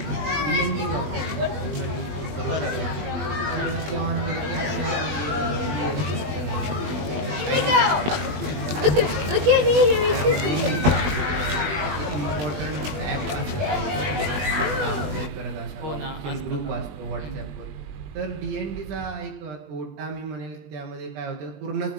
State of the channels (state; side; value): late; left; 20 ms